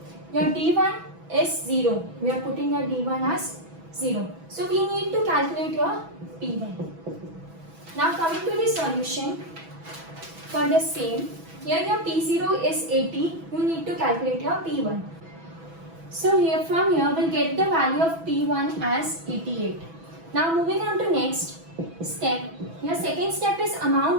Your D1 is 0. We are putting your D1 as 0. So we need to calculate your P1. Now coming to the solution for the same. Here your P0 is 80. You need to calculate your P1. So from here we'll get the value of P1 as 88. Now moving on to next step. Your second step is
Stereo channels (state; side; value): late; left; 6.1 ms